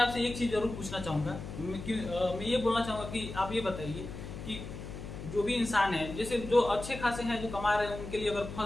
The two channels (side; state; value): left; noise; hum, 9 dB below the sound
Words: एक चीज जरूर पूछना चाहूंगा। मैं ये बोलना चाहूंगा कि आप ये बताइए कि जो भी इंसान है, जैसे जो अच्छे खासे हैं जो कमा रहे हैं, उनके लिए अगर